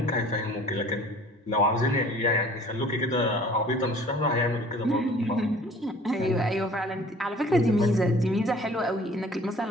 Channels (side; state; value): both; normal; correlation 0.50